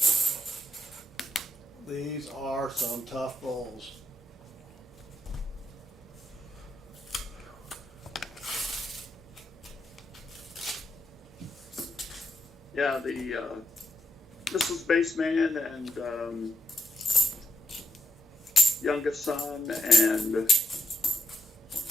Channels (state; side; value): normal; both; correlation 0.82